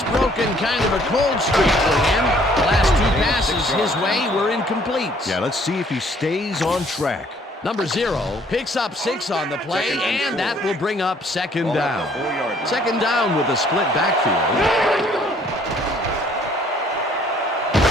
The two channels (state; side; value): normal; both; correlation 0.60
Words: broken kind of a cold streak for him. The last 2 passes his way were incomplete. Yeah, let's see if he stays on track. Number 0 picks up 6 on the play, and that will bring up 2nd down. 2nd down with a split backfield.